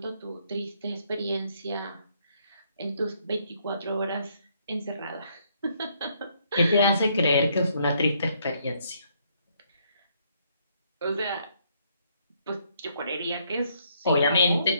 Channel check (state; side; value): inverted; both; correlation -0.70